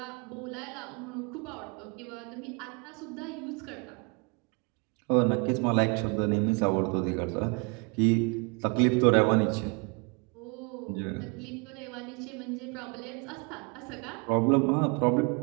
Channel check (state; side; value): quieter; left; 33.2 dB